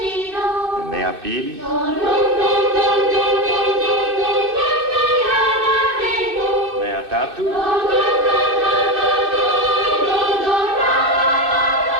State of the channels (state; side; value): late; left; 2.6 ms